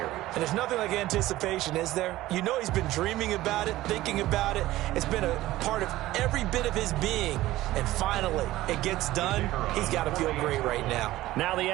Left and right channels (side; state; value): left; quieter; 16.3 dB